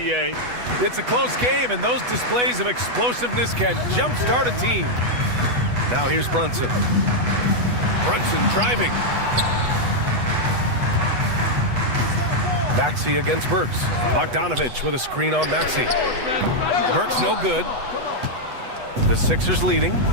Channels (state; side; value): late; left; 8.1 ms